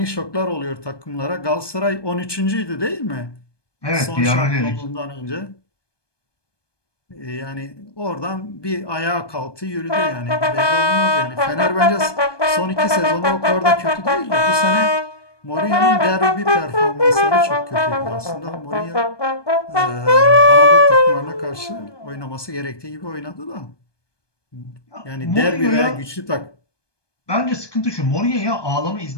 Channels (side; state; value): right; late; 1.2 ms